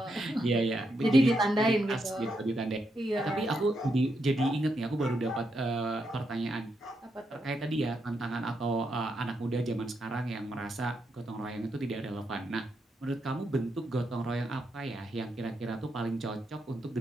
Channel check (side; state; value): both; normal; correlation 0.81